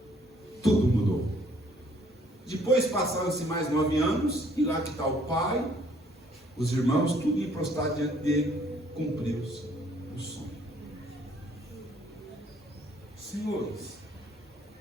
Tudo mudou. Depois passaram-se mais 9 anos, e lá que está o pai, os irmãos, tudo em prostrado diante dele, cumpriu-se o sonho. Senhores,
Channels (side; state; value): both; normal; correlation 0.62